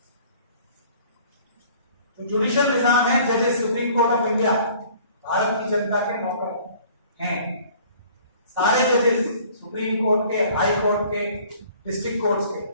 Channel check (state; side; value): inverted; both; correlation -0.53